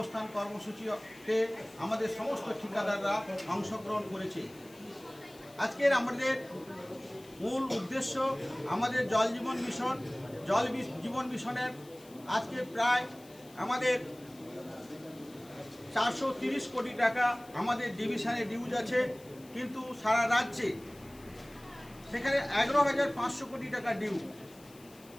কর্মসূচিতে আমাদের সমস্ত ঠিকাদাররা অংশগ্রহণ করেছে। আজকের আমাদের মূল উদ্দেশ্য আমাদের জল জীবন মিশনের আজকে প্রায় আমাদের 430 কোটি টাকা আমাদের ডিভিশনে ডিউজ আছে, কিন্তু সারা রাজ্যে সেখানে 11,500 কোটি টাকা ডিউ।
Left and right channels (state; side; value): noise; left; hiss, 24 dB below the sound